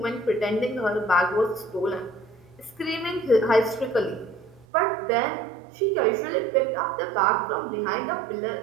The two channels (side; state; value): left; drops out; at 4.7 s